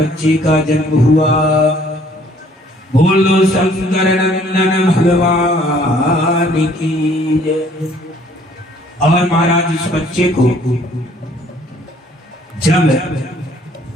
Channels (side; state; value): both; normal; correlation 0.60